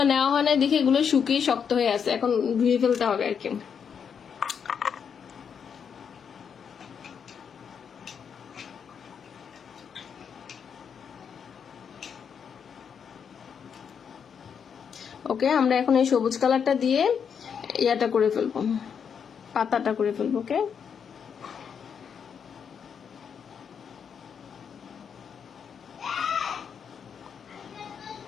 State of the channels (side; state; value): right; quieter; 7.1 dB